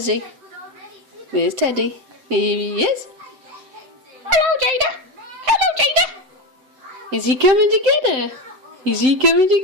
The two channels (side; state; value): left; late; 7.8 ms